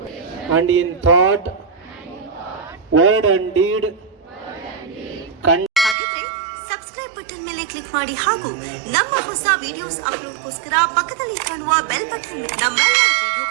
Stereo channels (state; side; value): drops out; left; at 6.0 s